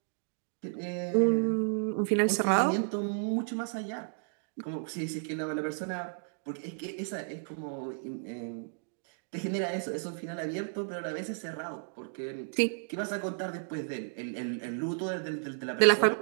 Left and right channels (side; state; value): left; silent; digital silence